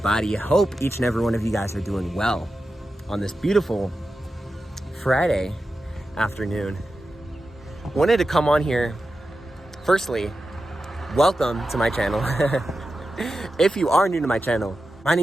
Hope each and every one of you guys are doing well on this beautiful Friday afternoon. Wanted to come on here. Firstly, welcome to my channel. If you are new to my channel, my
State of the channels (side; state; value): both; normal; correlation 0.91